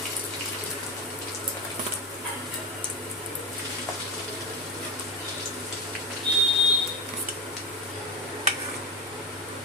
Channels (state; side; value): normal; both; correlation 0.17